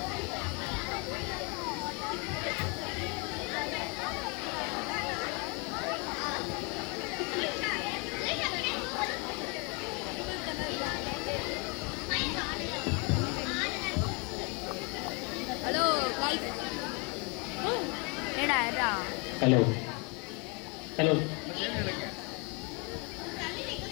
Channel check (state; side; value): quieter; right; 32.2 dB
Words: Hello guys. ஏடா ஹலோ ஹலோ